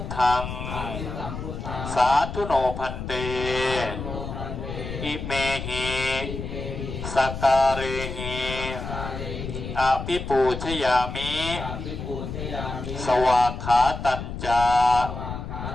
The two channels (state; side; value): noise; left; rumble, 7 dB below the sound